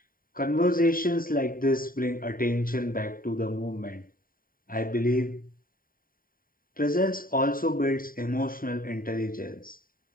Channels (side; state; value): right; late; 0.41 ms